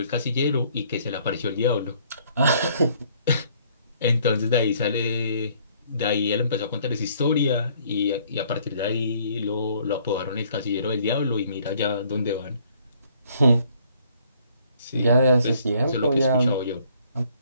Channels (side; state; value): both; inverted; correlation -0.62